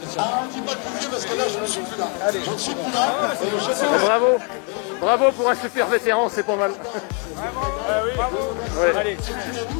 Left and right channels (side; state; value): right; quieter; 37.5 dB